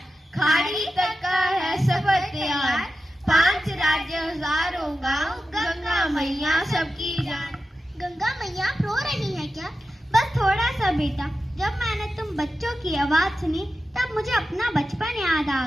खाड़ी तक का है सफर तैयार। 5 राज्य, हजारों गांव, गंगा मैया सबकी जान। गंगा मैया आप रो रही है क्या? बस थोड़ा सा बेटा। जब मैंने तुम बच्चों की आवाज सुनी तब मुझे अपना बचपन याद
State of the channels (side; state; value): both; normal; correlation 0.92